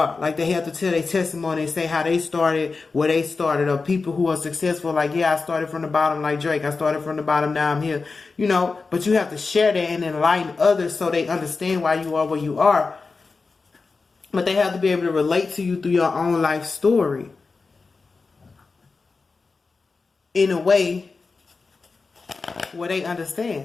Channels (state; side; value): quieter; right; 4.2 dB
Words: Like, they have to tell their testimony and say how they started, where they started, or people who are successful. Like, yeah, I started from the bottom, like Drake. I started from the bottom, now I'm here. You know, but you have to share that and enlighten others so they understand why you are where you are. But they have to be able to relate to you through your own life story in a way where they